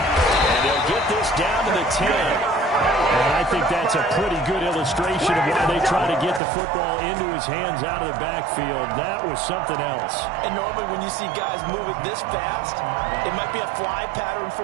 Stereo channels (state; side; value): drops out; left; at 6.4 s